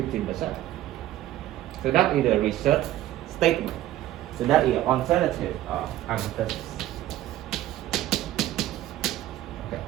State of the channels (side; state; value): left; quieter; 14.1 dB